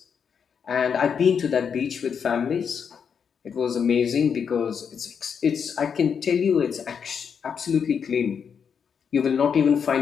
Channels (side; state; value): right; quieter; 6.9 dB